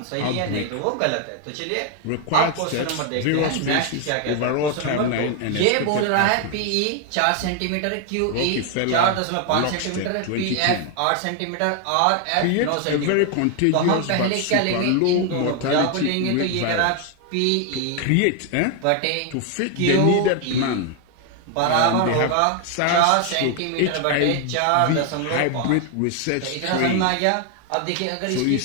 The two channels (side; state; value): both; different; correlation 0.00